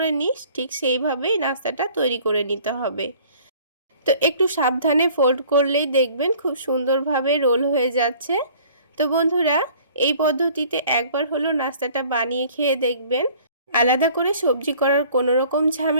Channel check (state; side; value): inverted; both; correlation -0.52